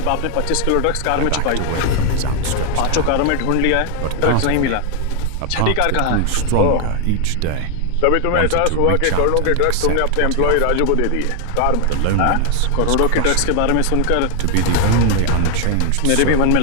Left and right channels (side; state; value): both; different; correlation 0.01